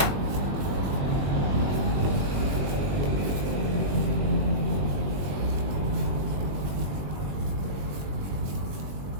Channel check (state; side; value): late; left; 21 ms